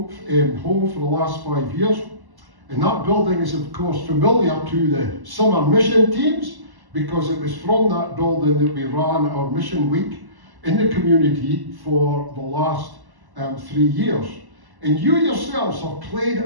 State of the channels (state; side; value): late; left; 1.1 ms